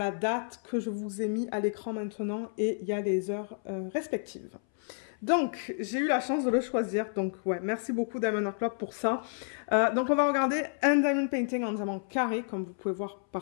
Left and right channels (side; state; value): right; silent; 58 dB below the other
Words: date que je vous ai mis à l'écran maintenant et il y a les heures respectives. Donc, j'ai eu la chance de le choisir. Donc, ouais, merci beaucoup Diamond Art Club pour ça. Donc, on va regarder un diamond painting en diamant carré, comme vous pouvez voir